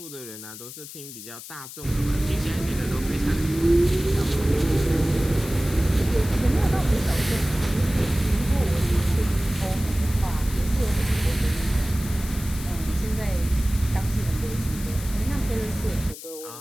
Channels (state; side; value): noise; left; hiss, 13 dB below the sound